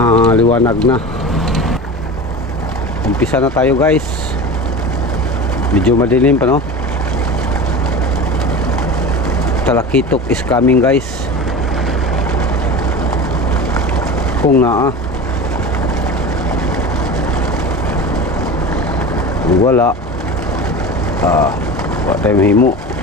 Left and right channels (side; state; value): both; normal; correlation 0.31